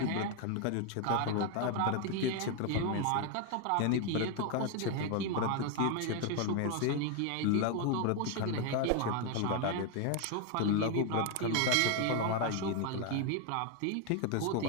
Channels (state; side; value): different; both; correlation 0.01